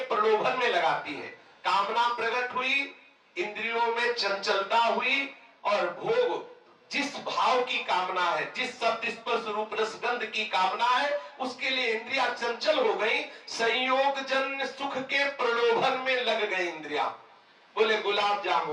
प्रलोभन में लगाती है। कामना प्रकट हुई, इंद्रियों में चंचलता हुई, और भोग जिस भाव की कामना है, जिस शब्द स्पर्श रूप रसगंध की कामना है, उसके लिए इंद्रियां चंचल हो गई, संयोगजन सुख के प्रलोभन में लग गई इंद्रियां। बोले गुलाब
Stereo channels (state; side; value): identical; both; correlation 1.00